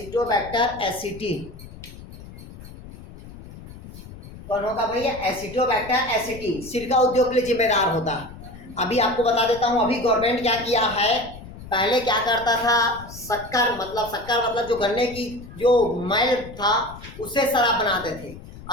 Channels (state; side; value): noise; left; rumble, 16 dB below the sound